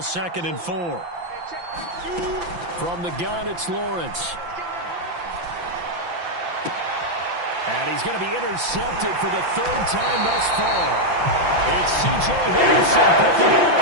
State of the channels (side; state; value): left; late; 5.9 ms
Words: and 4. From the gun, it's Lawrence. And he's going to be intercepted for the 3rd time thus far. It's C.J. Henderson picking it